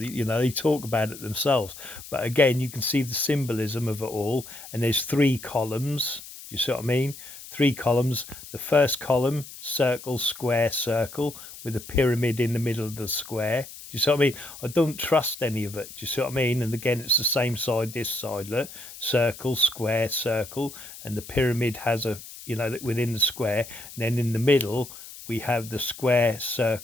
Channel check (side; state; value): left; noise; hiss, 15 dB below the sound